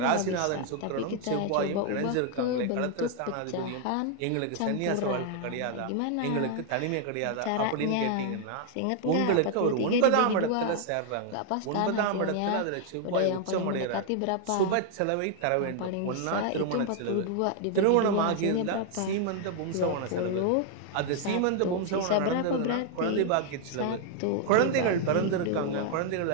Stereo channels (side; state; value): both; different; correlation 0.00